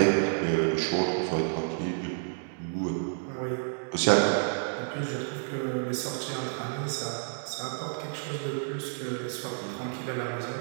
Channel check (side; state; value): left; silent; digital silence